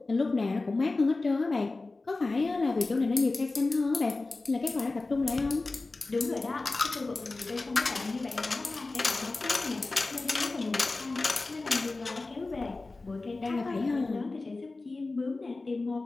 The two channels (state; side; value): quieter; right; 3.4 dB